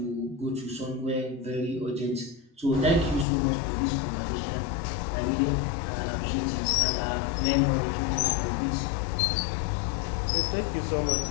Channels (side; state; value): right; drops out; at 3.2 s